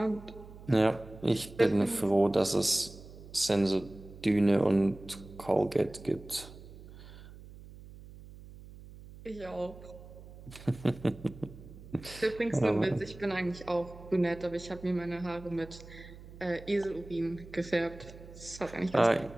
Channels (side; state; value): right; noise; hum, 17 dB below the sound